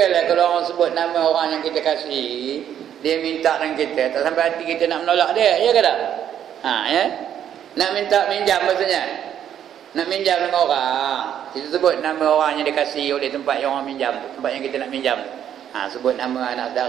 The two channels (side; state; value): left; quieter; 9.8 dB